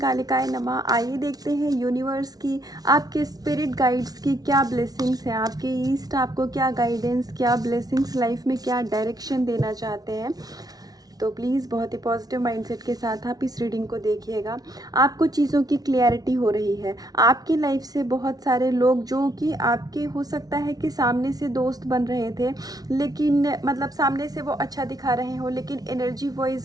नमः। आइए देखते हैं यूनिवर्स की, आपके स्पिरिट गाइड्स की क्या ब्लेसिंग्स हैं, आपके ईस्ट आपको क्या गाइडेंस, क्या ब्लेसिंग्स लाइफ में क्या डायरेक्शन देना चाहते हैं। तो प्लीज़ बहुत ही पॉजिटिव माइंडसेट के साथ आप इस रीडिंग को देखिएगा। आपको चीज़ों की क्लैरिटी हो रही है। आपकी लाइफ से बहुत सारे लोग जो कि आपके हो सकता है कि सामने से दोस्त बन रहे थे, लेकिन मतलब सामने से वो अच्छा दिखा रहे हो, लेकिन एनर्जी वाइज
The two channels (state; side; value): late; left; 0.19 ms